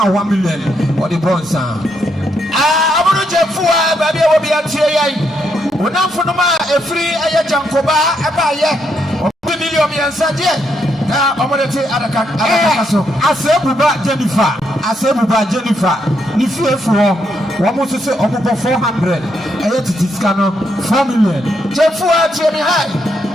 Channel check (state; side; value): normal; both; correlation 0.78